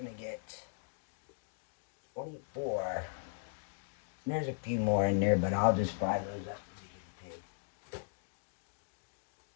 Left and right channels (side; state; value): right; silent; digital silence